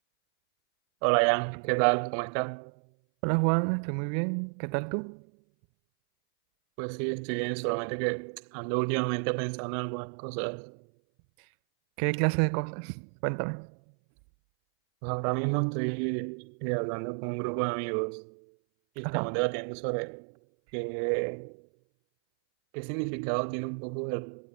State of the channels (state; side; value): silent; left; 57 dB below the other